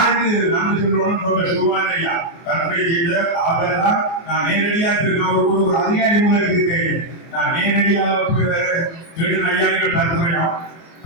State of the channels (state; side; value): late; right; 24 ms